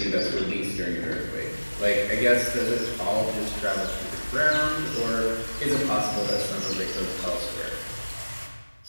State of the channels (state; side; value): inverted; both; correlation -1.00